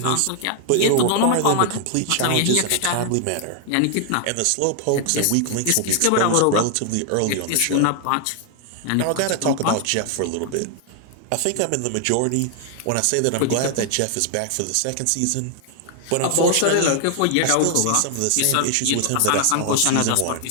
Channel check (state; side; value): different; both; correlation 0.00